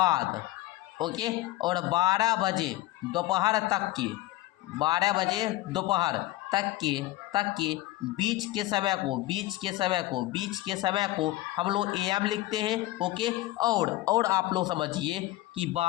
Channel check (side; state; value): right; quieter; 17.2 dB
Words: ओके, और 12 बजे दोपहर तक के 12 बजे दोपहर तक के बीच के समय को हम लोग AM लिखते हैं। ओके और आप लोग समझिए कि